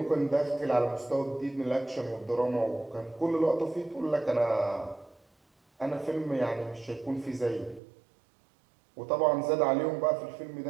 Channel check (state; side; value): drops out; left; at 7.8 s